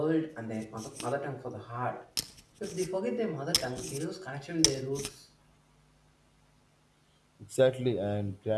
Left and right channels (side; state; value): both; identical; correlation 1.00